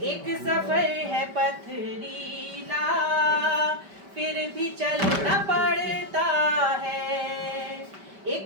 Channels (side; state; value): left; late; 5.1 ms